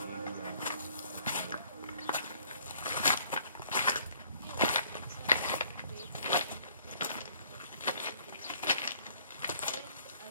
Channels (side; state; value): both; inverted; correlation -0.59